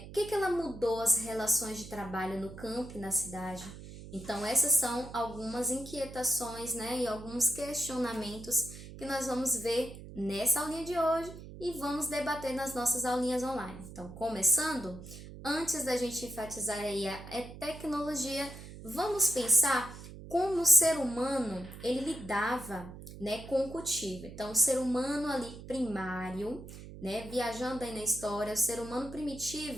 que ela mudou as relações de trabalho no campo e na cidade? Então, essas são algumas inquietações, e alguns questionamentos que nós vamos ver nessa aulinha de hoje e vamos debater nas nossas aulinhas online. Então, começando, antes da gente enfatizar aí a tecnologia, vamos pensar como o ser humano ele lidava, com o cultivo. Então, o ser humano ali primário, viajando aí na história, o ser humano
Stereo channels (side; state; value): right; noise; hum, 14 dB below the sound